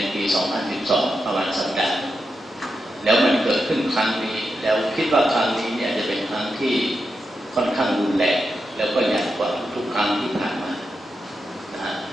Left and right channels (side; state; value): both; normal; correlation 0.87